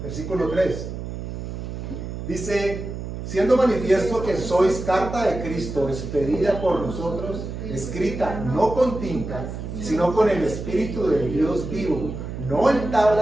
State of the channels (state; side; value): noise; right; hum, 7 dB below the sound